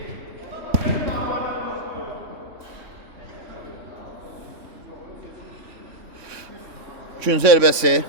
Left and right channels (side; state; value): left; late; 3.5 ms